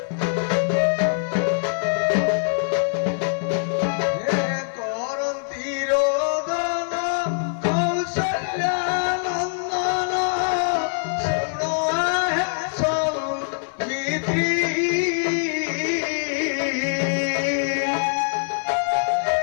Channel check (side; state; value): right; silent; 57 dB below the other